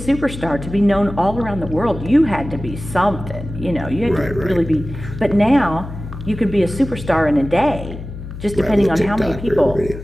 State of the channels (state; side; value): noise; left; hum, 11 dB below the sound